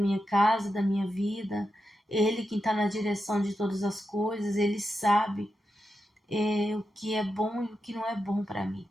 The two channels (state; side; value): normal; both; correlation 0.88